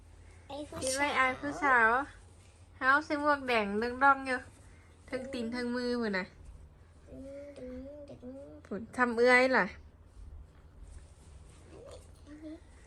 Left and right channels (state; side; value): identical; both; correlation 1.00